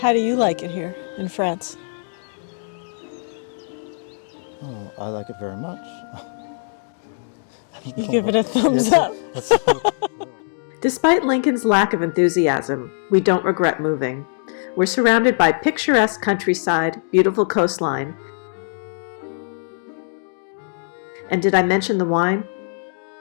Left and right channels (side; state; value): right; silent; digital silence